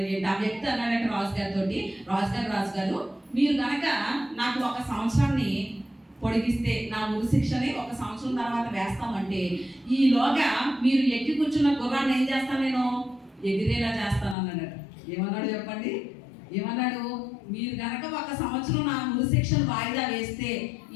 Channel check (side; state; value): right; drops out; at 14.4 s